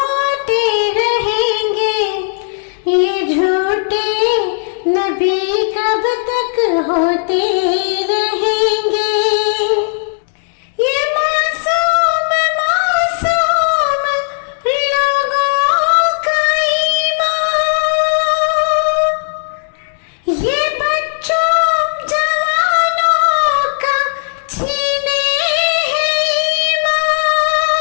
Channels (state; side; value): silent; right; digital silence